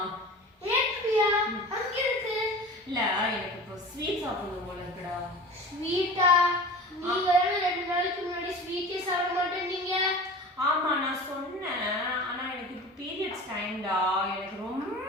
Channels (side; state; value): both; normal; correlation 0.36